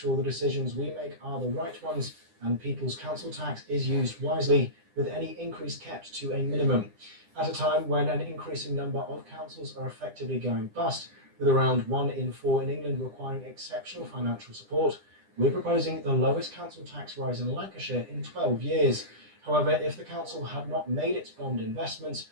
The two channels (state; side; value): late; left; 10 ms